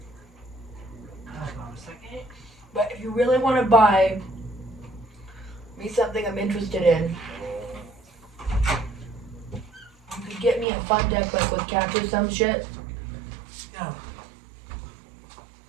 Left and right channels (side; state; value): left; drops out; at 10.7 s